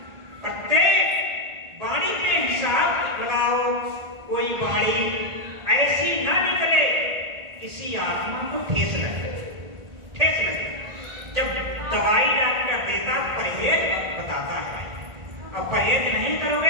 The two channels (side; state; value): left; late; 1.8 ms